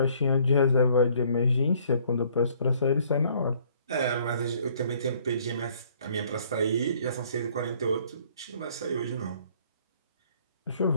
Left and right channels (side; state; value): both; inverted; correlation -0.61